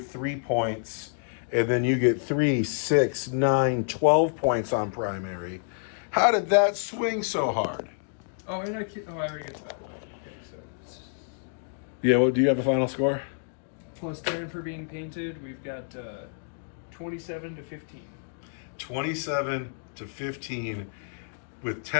3 points, and then you get 3, 6, 9, 12 points on primary. How did that swing so hard? Oh, and I already got that. Okay, so Yeah, well, do you have a final score? plus Darren for being painted, we've got 27 to 15. 27 to 15 with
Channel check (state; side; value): silent; right; digital silence